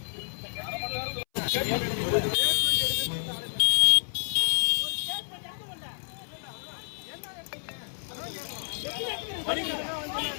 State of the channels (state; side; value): silent; right; 58 dB below the other